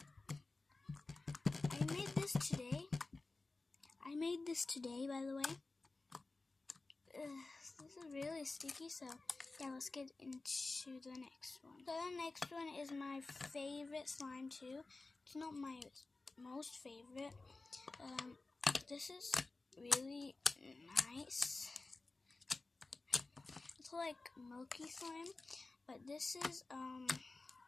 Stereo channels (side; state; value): right; quieter; 3.4 dB